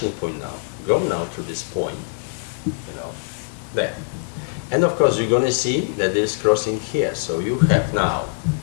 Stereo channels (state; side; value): silent; right; digital silence